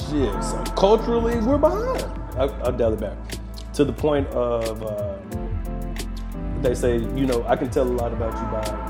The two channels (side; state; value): both; identical; correlation 1.00